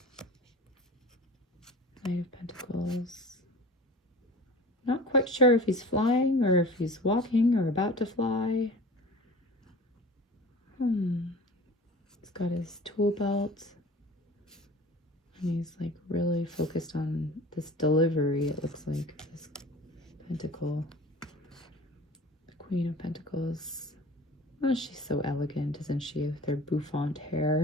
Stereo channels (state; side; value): normal; both; correlation 0.40